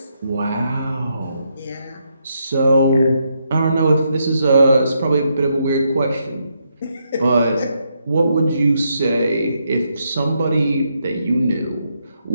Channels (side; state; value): both; inverted; correlation -0.79